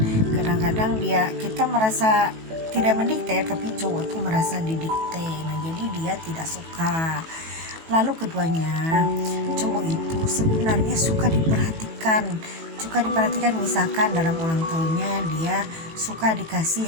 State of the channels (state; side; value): late; left; 18 ms